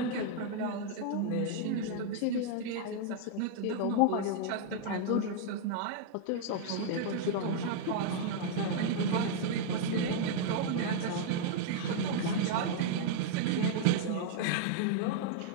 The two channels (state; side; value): different; both; correlation -0.01